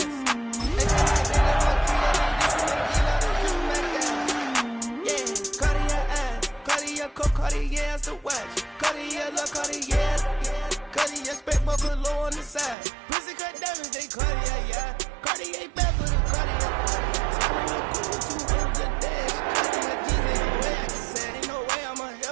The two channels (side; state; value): left; drops out; at 12.8 s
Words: Cartier's the watch. Cartier, love Cartier. Cartier, spec buckle low on the side. Pussy cut diamonds, they Cartier, yeah. Cartier back for the Cartier. Turning the cool to the dash. Cartier jeans, ain't no way I can say. Ain't no way I'm